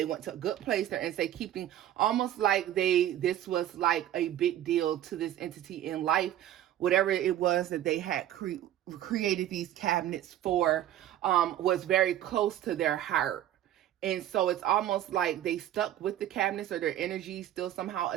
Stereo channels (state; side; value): quieter; left; 12.2 dB